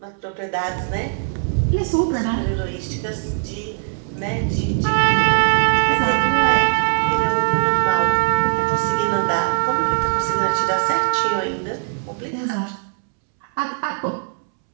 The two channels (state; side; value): silent; left; 66 dB below the other